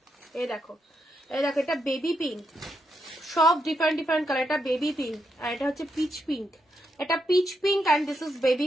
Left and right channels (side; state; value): both; normal; correlation 0.81